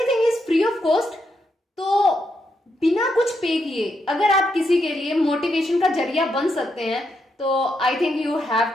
is free of cost, तो बिना कुछ पे किए अगर आप किसी के लिए मोटिवेशन का जरिया बन सकते हैं तो I think you have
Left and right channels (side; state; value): both; normal; correlation 0.81